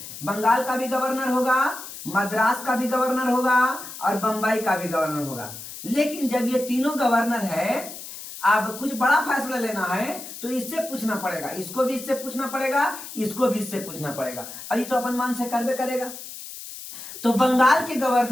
बंगाल का भी गवर्नर होगा, मद्रास का भी गवर्नर होगा और बंबई का भी गवर्नर होगा। लेकिन जब ये तीनों गवर्नर है, अब कुछ बड़ा फैसला लेना है तो इससे पूछना पड़ेगा, इसको भी इससे पूछना पड़ेगा, इसको भी इससे पूछना पड़ेगा, अभी तो अपन मन से करबे करेगा। तो बंगाल के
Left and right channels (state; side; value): noise; left; hiss, 12 dB below the sound